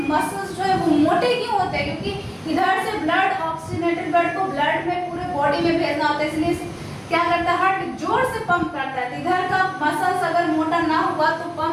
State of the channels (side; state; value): both; identical; correlation 1.00